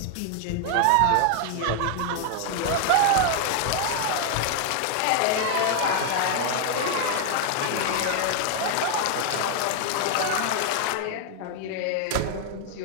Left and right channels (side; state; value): both; different; correlation 0.00